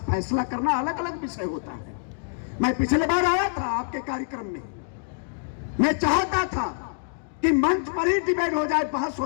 फैसला करना अलग अलग विषय होता है। मैं पिछले बार आया था आपके कार्यक्रम में, मैं चाहता था कि मंच पर ही डिबेट हो जाए, बहस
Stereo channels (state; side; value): silent; right; digital silence